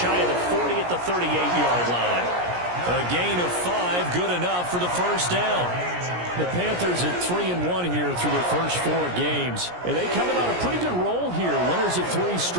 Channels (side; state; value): left; late; 17 ms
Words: of the 40 at the 38-yard line. A gain of 5, good enough for the first down. The Panthers at 3-1 here through their first 4 games. And they coming on a pretty good roll here. Winners of 3